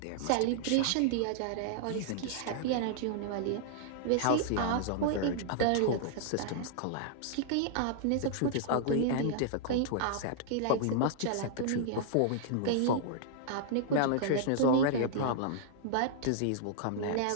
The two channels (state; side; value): different; both; correlation -0.01